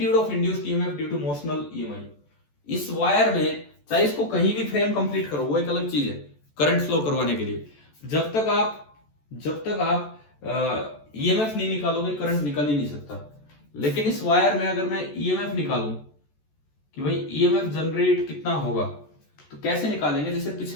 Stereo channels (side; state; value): right; late; 14 ms